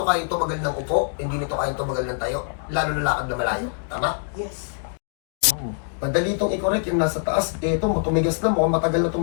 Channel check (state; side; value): silent; right; digital silence